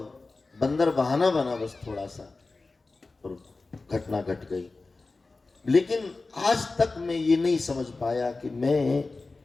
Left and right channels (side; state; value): right; quieter; 3.6 dB